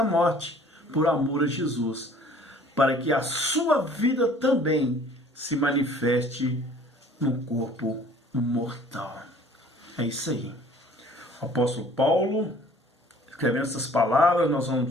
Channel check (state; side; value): normal; both; correlation 0.52